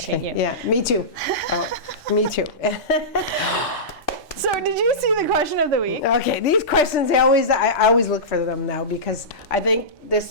you. Yeah, me too. Me too. So did you see the question of the week? Okay, these questions, I always look for them now because I think this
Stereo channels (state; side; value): normal; both; correlation -0.18